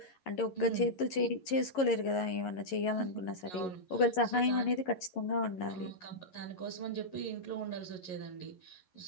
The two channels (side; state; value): right; late; 11 ms